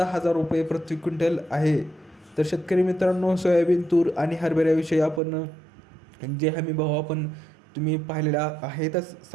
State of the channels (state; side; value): drops out; left; at 5.2 s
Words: रुपये प्रति क्विंटल आहे. तर शेतकरी मित्रांनो, सोयाबीन, तूर आणि हरभऱ्याविषयी आपण जे हमी भाव आपण तुम्ही पाहिलेल्या आहेतच